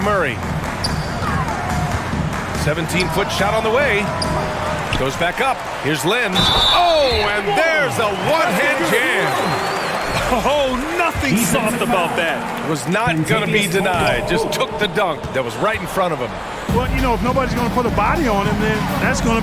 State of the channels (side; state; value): both; identical; correlation 1.00